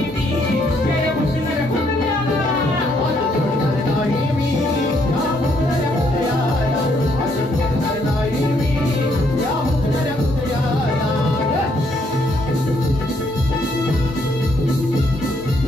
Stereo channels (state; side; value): normal; both; correlation 0.71